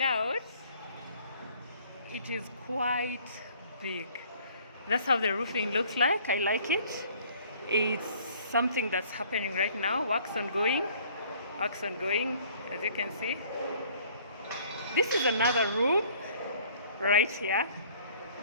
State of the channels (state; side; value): inverted; both; correlation -0.55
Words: out it is quite big. That's how the roofing looks like. I like it. It's something that's happening right now. Work's ongoing, as you can see. This is another room right here.